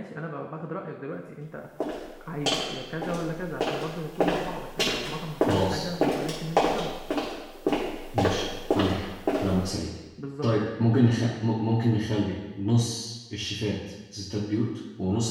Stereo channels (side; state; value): both; identical; correlation 1.00